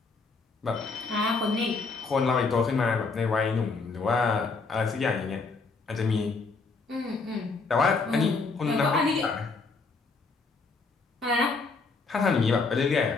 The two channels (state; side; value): quieter; right; 4.2 dB